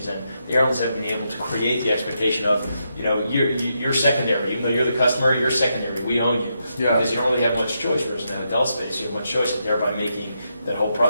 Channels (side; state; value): both; inverted; correlation -0.82